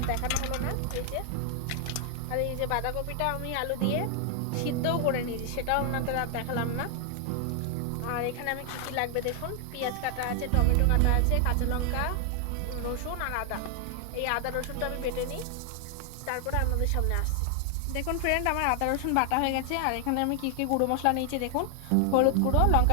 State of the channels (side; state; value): both; different; correlation 0.00